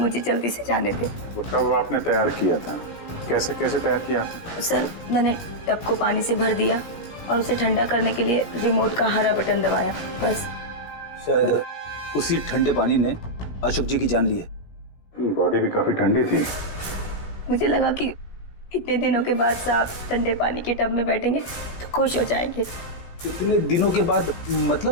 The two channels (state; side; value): late; right; 17 ms